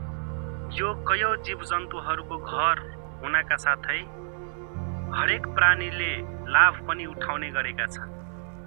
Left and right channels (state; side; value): silent; left; digital silence